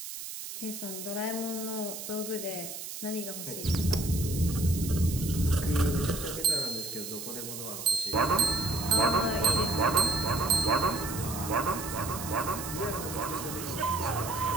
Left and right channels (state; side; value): noise; right; hiss, 8 dB below the sound